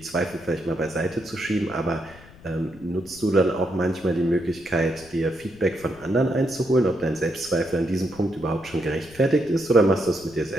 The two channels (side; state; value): left; noise; rumble, 22 dB below the sound